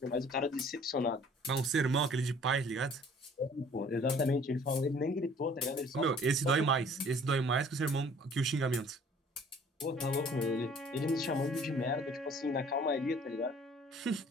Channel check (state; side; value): normal; both; correlation 0.53